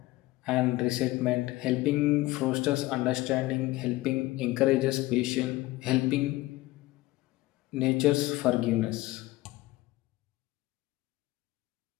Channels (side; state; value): right; quieter; 18.9 dB